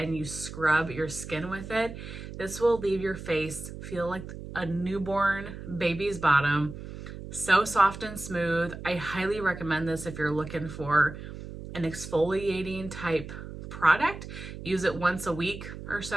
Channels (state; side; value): noise; right; hum, 11 dB below the sound